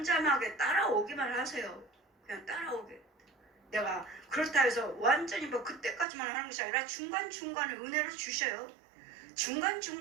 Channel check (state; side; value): drops out; left; at 6.1 s